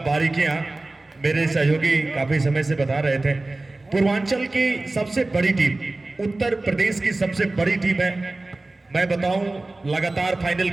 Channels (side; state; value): left; quieter; 3.0 dB